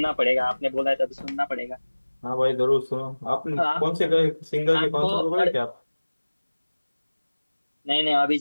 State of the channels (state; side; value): inverted; both; correlation -1.00